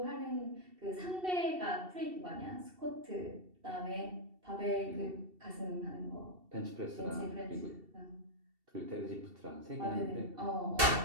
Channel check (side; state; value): left; late; 2.7 ms